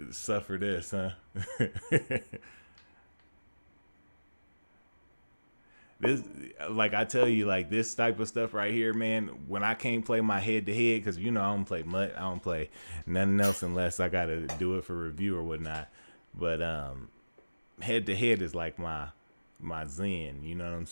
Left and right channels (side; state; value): both; inverted; correlation -1.00